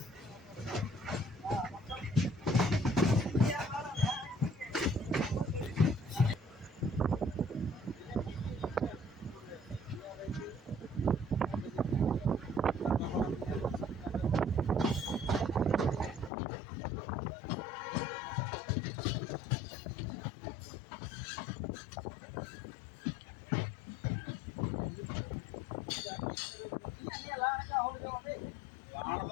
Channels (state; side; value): drops out; right; at 16.3 s